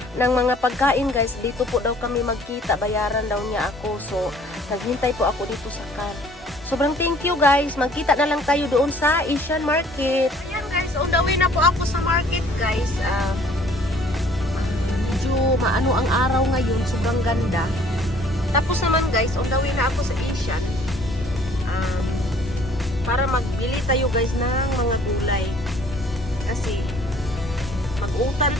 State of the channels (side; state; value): both; normal; correlation 0.56